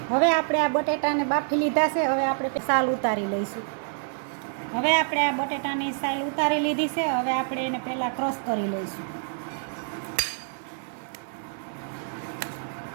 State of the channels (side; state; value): left; silent; digital silence